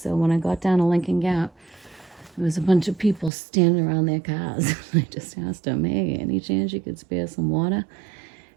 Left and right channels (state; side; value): drops out; left; at 3.3 s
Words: So when I got down to Lincoln Gap, there was a bunch of people standing around their cars. I just asked them, hey, any chance you could spare some water?